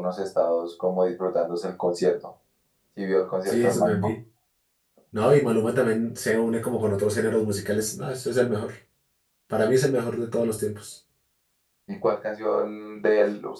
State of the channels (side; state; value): both; identical; correlation 1.00